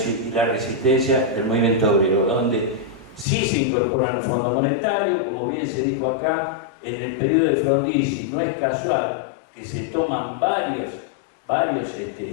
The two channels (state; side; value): drops out; right; at 3.2 s